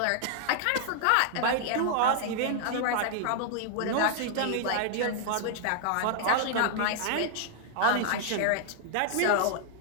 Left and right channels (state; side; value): different; both; correlation -0.01